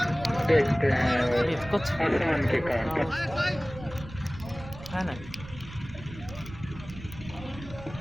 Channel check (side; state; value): right; noise; rumble, 15 dB below the sound